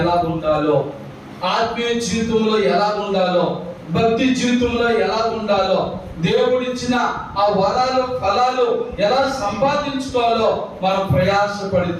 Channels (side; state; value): both; identical; correlation 1.00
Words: ఎలా ఉండాలో, ఆత్మీయ జీవితంలో ఎలా ఉండాలో, భక్తి జీవితంలో ఎలా ఉండాలో, దేవుడిచ్చిన ఆ వరాలు ఫలాలు ఎలా సంపాదించుకోవాలో మనం